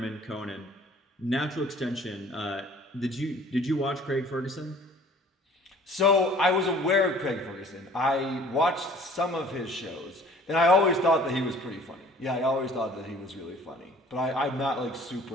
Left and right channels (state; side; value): normal; both; correlation 0.51